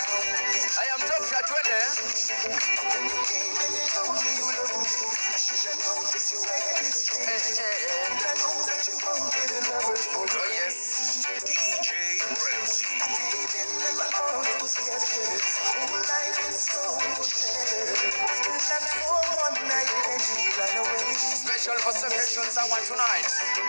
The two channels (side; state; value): both; inverted; correlation -1.00